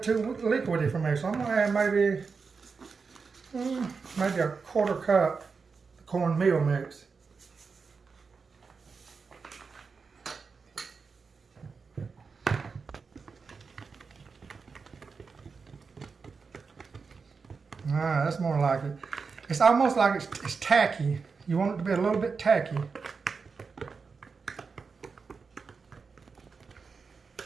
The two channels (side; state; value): left; quieter; 5.0 dB